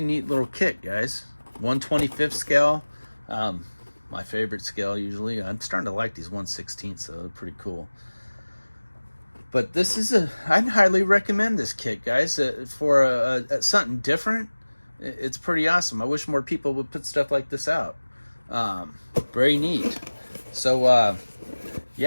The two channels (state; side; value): inverted; both; correlation -1.00